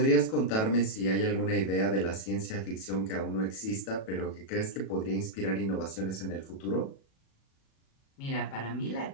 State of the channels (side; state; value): right; late; 37 ms